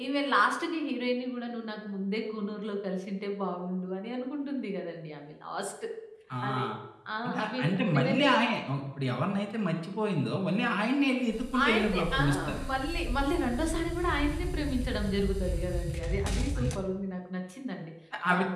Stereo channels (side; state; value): both; identical; correlation 1.00